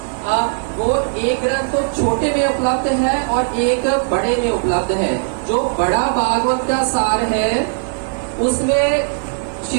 वो एक ग्रंथ तो छोटे में उपलब्ध है और एक बड़े में उपलब्ध है। जो बड़ा भागवत का सार है उसमें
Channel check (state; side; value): silent; left; 67 dB below the other